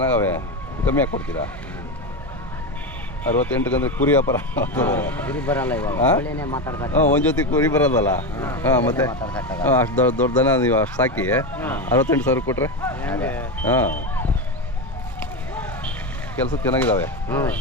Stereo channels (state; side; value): normal; both; correlation 0.15